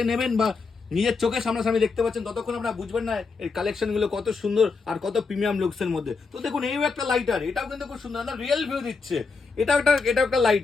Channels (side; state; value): right; quieter; 4.6 dB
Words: নেবেন বা নিজের চোখের সামনাসামনি দেখতে পাচ্ছেন ততক্ষণ আপনারা বুঝবেন না এই কালেকশন গুলো কত সুন্দর আর কত প্রিমিয়াম লুকস এর মধ্যে। তো দেখুন এই একটা লাইটার, এটাও কিন্তু খুব সুন্দর, রিয়েল ভিউ দিচ্ছে। এটা একটা